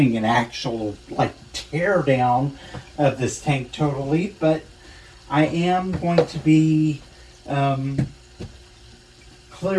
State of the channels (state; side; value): identical; both; correlation 1.00